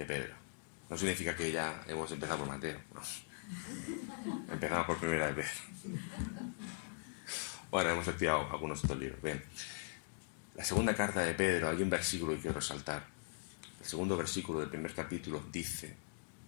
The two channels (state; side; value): silent; right; digital silence